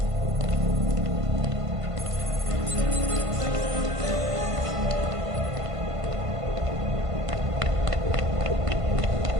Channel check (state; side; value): late; left; 1.5 ms